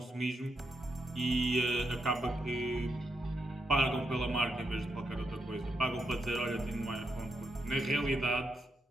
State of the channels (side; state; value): both; normal; correlation 0.81